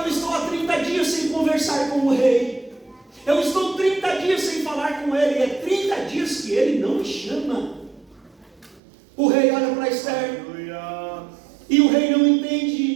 estou há 30 dias sem conversar com o rei. Eu estou 30 dias sem falar com ele. É 30 dias que ele não me chama. O rei olha para Esther, e o rei não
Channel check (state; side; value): drops out; left; at 8.8 s